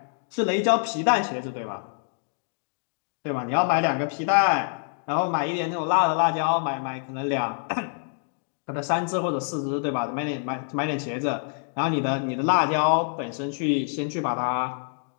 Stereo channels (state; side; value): silent; right; 61 dB below the other